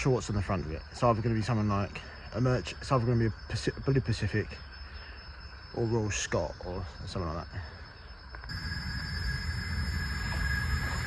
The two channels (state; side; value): identical; both; correlation 1.00